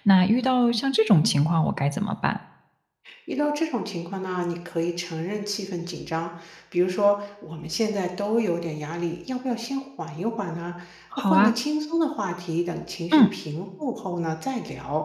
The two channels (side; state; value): both; identical; correlation 1.00